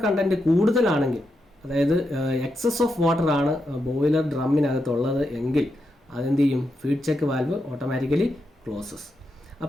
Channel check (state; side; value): normal; both; correlation 0.85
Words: കണ്ടൻറ്റ് കൂടുതലാണെങ്കിൽ, അതായത് എക്സസ് ഓഫ് വാട്ടർ ആണ് ബോയിലർ ഡ്രമ്മിനകത്തുള്ളത് എങ്കിൽ അതെന്ത് ചെയ്യും? Feed check valve automatically closes.